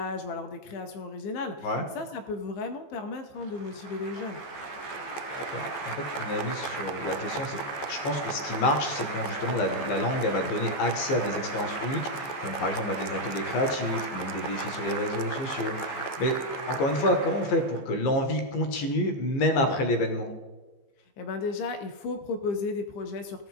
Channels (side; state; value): right; late; 14 ms